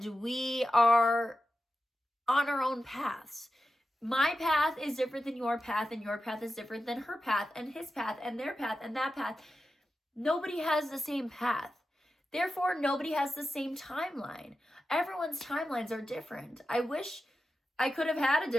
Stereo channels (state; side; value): normal; both; correlation 0.92